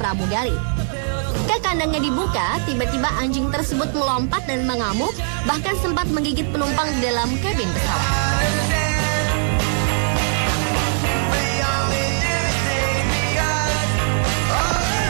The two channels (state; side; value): silent; left; digital silence